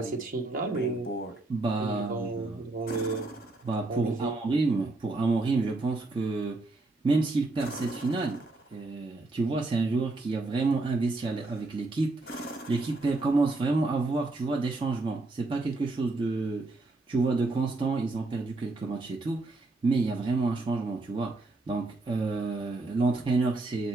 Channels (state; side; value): quieter; left; 3.2 dB